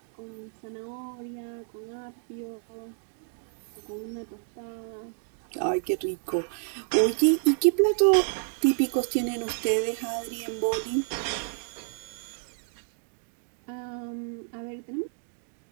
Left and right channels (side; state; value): left; silent; digital silence